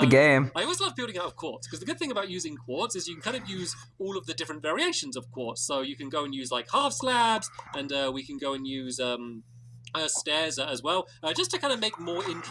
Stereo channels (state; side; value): identical; both; correlation 1.00